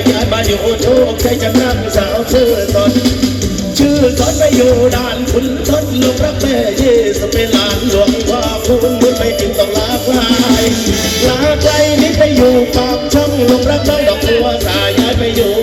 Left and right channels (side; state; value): both; identical; correlation 1.00